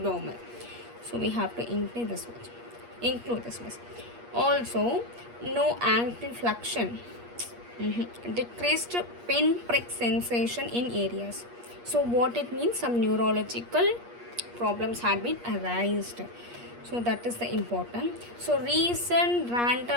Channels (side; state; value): left; late; 8.4 ms